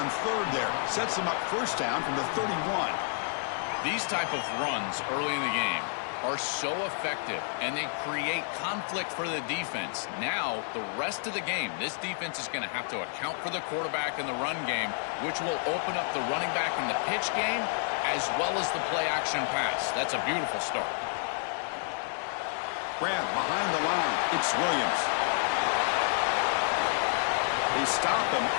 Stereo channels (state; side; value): silent; right; 58 dB below the other